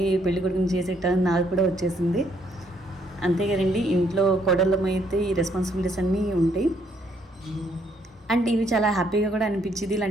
పెళ్లి కొడుకుని చేసేటానికి నాకు కూడా వచ్చేసింది. అంతే కదండి, ఇంట్లో కోడళ్ళమైతే ఈ రెస్పాన్సిబిలిటీస్ అన్నీ ఉంటాయి. అండ్ ఇవి చాలా హ్యాపీగా కూడా అనిపించింది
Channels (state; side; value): normal; both; correlation 0.70